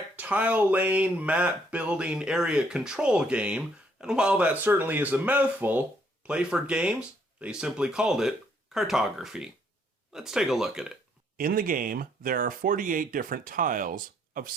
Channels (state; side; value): normal; both; correlation 0.68